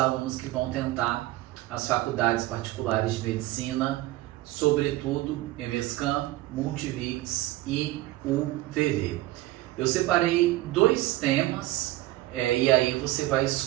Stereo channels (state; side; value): quieter; left; 17.2 dB